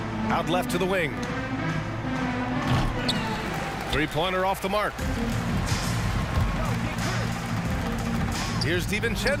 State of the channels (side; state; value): both; identical; correlation 1.00